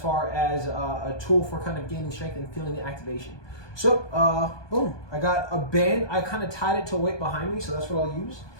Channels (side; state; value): right; late; 1.2 ms